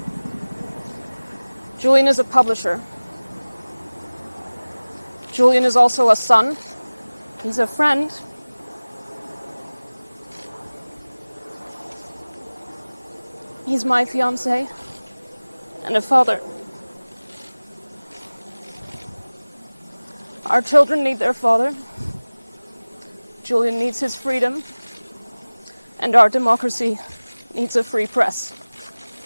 Julian is a publisher. Julian is also a son. He's a friend. He's my fiancé and a father. Our children need their father. Julian needs his freedom. And our democracy needs a free press.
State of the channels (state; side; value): inverted; both; correlation -1.00